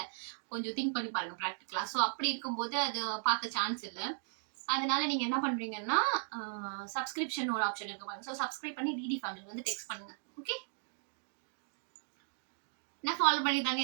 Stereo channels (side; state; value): left; silent; digital silence